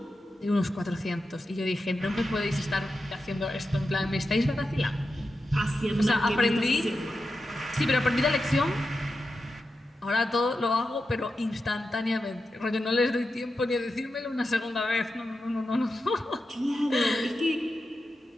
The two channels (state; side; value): normal; both; correlation 0.90